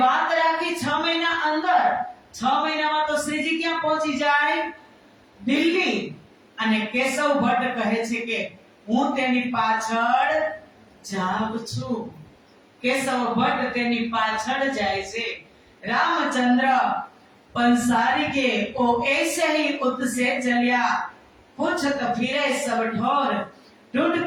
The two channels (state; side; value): identical; both; correlation 1.00